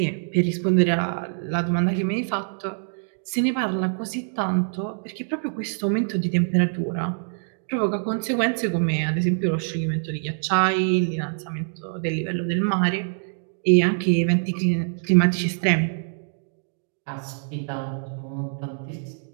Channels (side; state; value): left; silent; digital silence